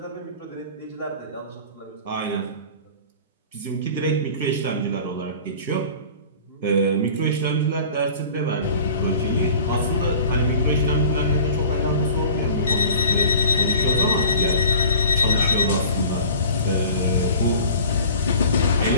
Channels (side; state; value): both; inverted; correlation -0.43